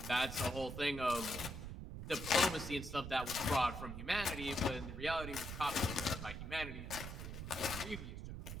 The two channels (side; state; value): right; noise; rumble, 7 dB below the sound